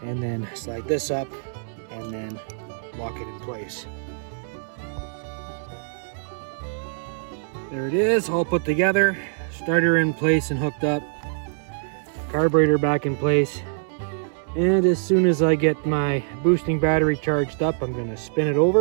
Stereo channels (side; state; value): left; silent; digital silence